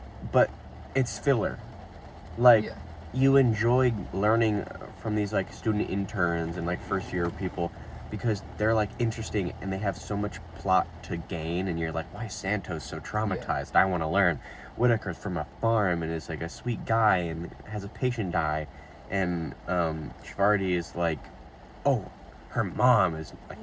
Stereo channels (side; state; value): both; identical; correlation 1.00